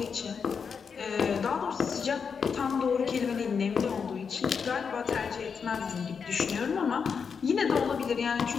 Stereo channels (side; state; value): right; quieter; 6.1 dB